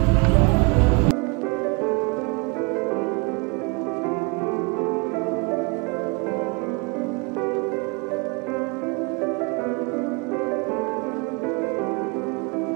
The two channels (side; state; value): left; quieter; 30.7 dB